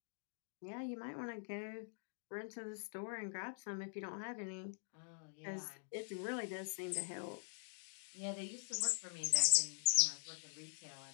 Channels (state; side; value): silent; right; digital silence